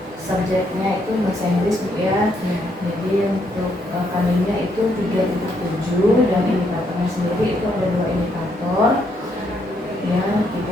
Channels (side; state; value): both; normal; correlation 0.74